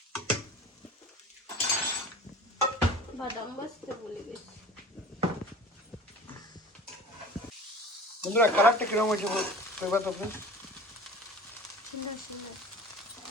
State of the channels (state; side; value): normal; both; correlation 0.40